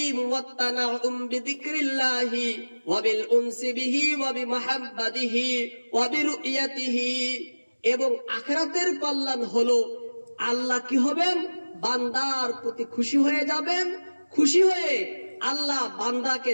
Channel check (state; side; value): inverted; both; correlation -1.00